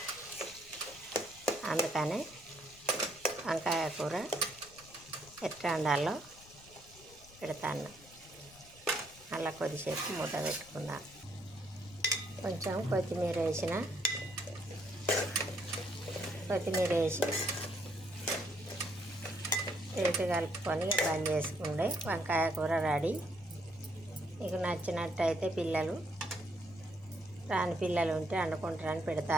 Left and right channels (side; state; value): left; noise; rumble, 23 dB below the sound